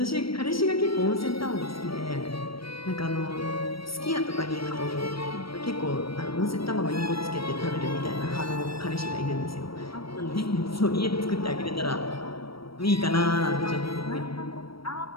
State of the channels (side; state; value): right; late; 0.75 ms